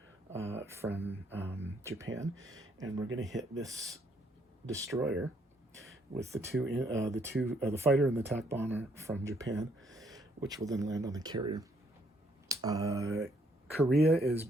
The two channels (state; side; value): normal; both; correlation 0.69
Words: from Japan, and we're going to hit this destroyer with the fighter and the attack bomber from Japan, which will then land on the carrier. Korea is